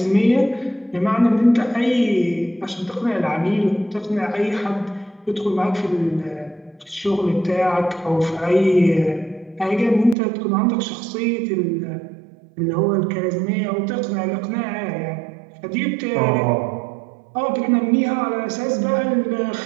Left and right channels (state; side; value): drops out; left; at 10.2 s